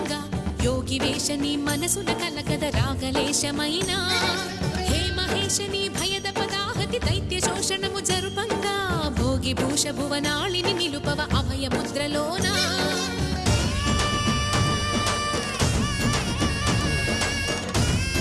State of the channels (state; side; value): identical; both; correlation 1.00